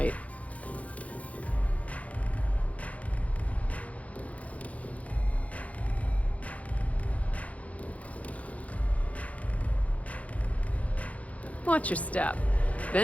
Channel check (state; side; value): late; right; 0.067 ms